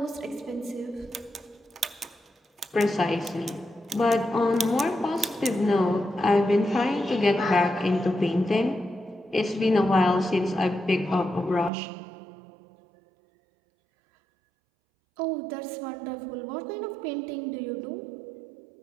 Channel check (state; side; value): drops out; left; at 11.7 s